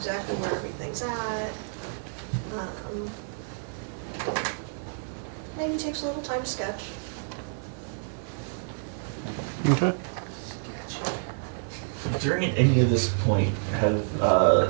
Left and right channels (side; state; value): left; silent; 59 dB below the other